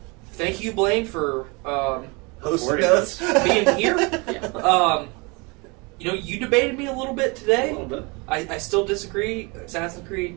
Thank you, Blaine, for Hosting us. being here. Yeah. You debated me a little bit today. A little bit. I still disagree. Assassin's Creed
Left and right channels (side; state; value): left; quieter; 28.4 dB